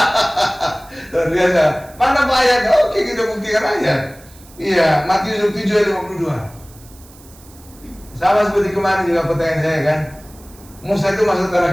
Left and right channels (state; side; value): noise; right; hiss, 24 dB below the sound